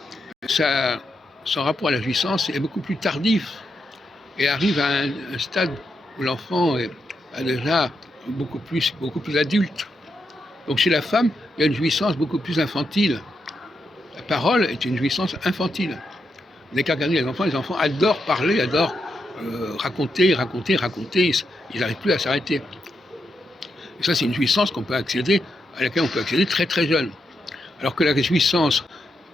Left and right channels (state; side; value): normal; both; correlation 0.83